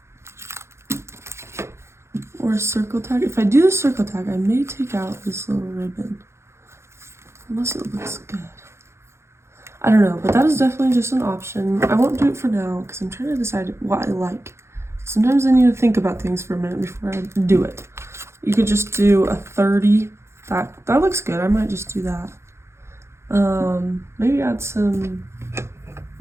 Or a circle tag. If I do the circle tag, I may take out this little ribbon. Unless it looks good. I don't know, but that is definitely just an option. I won't do it for now because I'm trying to decide what I like. Sometimes I need to think about things for a minute before I do it. You could just do a 30. That looks good. I might just do that. Maybe add some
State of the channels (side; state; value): left; late; 0.13 ms